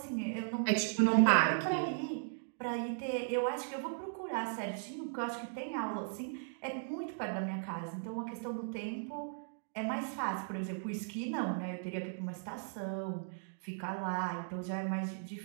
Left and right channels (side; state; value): left; silent; digital silence